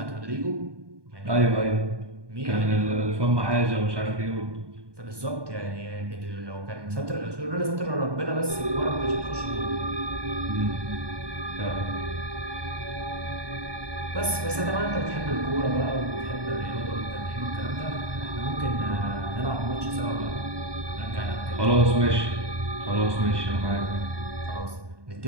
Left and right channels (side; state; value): left; late; 1.2 ms